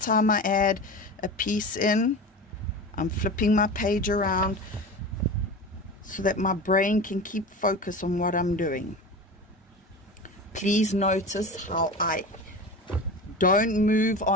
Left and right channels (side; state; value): both; normal; correlation 0.30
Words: I add a piece in. I'm flipping my page around so that my brain can keep focus on what I'm doing. Please notice how I don't move